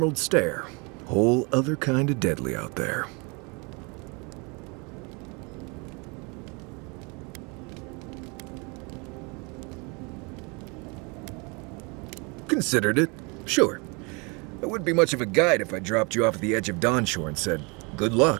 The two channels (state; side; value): quieter; left; 30.2 dB